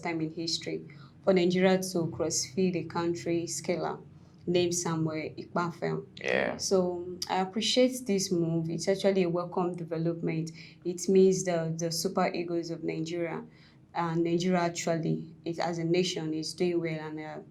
time in history for Nigeria to cross-feed a country scaler named Samuel Ikpafel. Yeah. So I appreciate this move. It's actually a welcome development. It means the Super Eagles of Nigeria and Nigeria actually, as a nation, is doing well, and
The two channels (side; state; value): both; identical; correlation 1.00